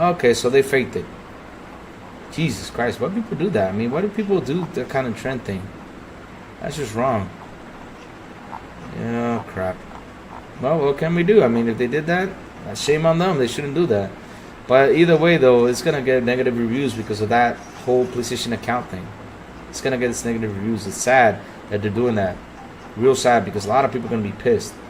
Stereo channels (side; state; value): both; identical; correlation 1.00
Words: Okay, so they faked it. Jesus Christ, why do people do that? I mean, why do people do that kind of trend thing? That's just wrong. Yeah, crap. Well, what can we do? I mean, if they did that, shame on them. They shouldn't do that. But either way, though, it's going to get negative reviews because of that whole PlayStation account thing. It's going to get its negative reviews. It's sad that they're doing that. Real sad, because a lot of people are going to be pissed.